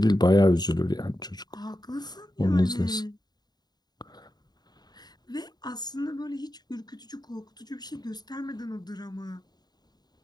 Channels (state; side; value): late; right; 0.20 ms